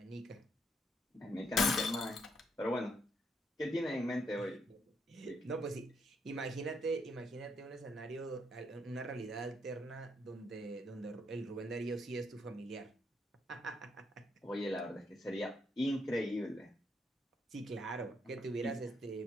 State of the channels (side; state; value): both; normal; correlation 0.75